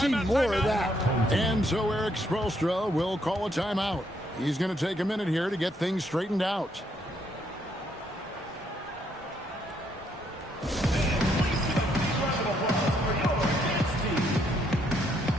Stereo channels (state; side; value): normal; both; correlation 0.72